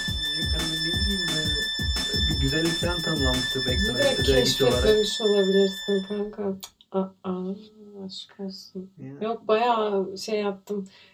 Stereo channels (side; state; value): both; identical; correlation 1.00